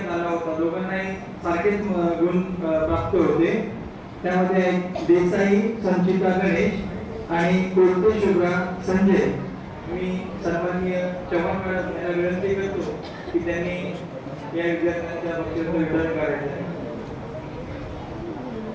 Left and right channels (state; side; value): identical; both; correlation 1.00